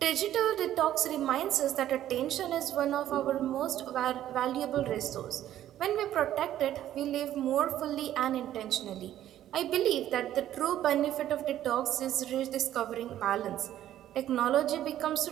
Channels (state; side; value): quieter; left; 12.2 dB